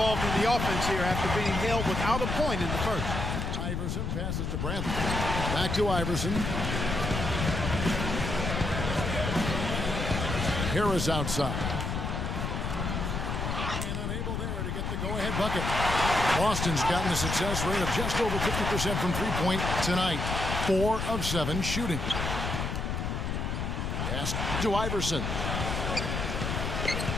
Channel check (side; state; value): left; noise; rumble, 2 dB below the sound